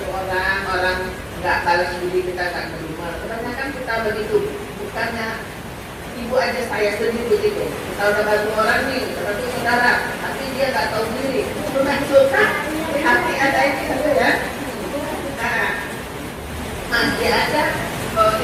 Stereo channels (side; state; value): both; identical; correlation 1.00